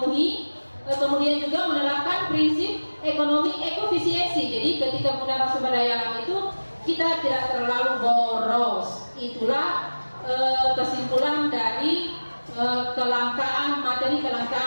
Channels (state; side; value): inverted; both; correlation -1.00